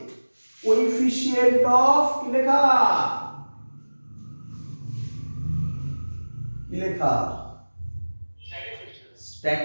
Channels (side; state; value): both; inverted; correlation -1.00